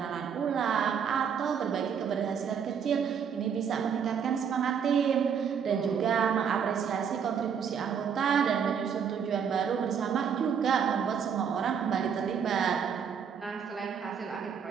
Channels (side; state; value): left; quieter; 7.3 dB